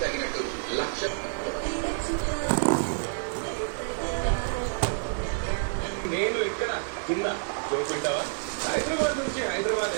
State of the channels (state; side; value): silent; left; digital silence